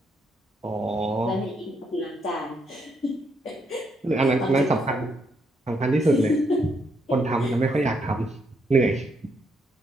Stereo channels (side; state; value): both; normal; correlation 0.76